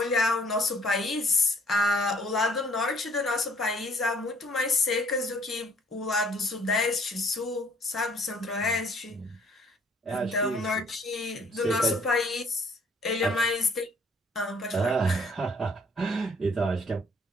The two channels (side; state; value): both; normal; correlation 0.60